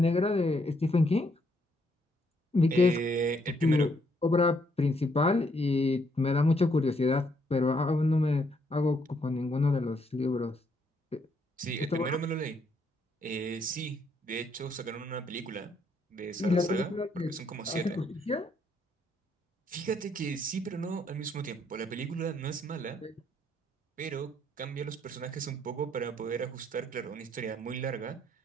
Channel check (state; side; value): normal; both; correlation 0.72